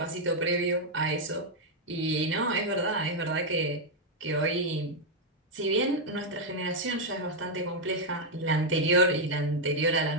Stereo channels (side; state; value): both; normal; correlation -0.01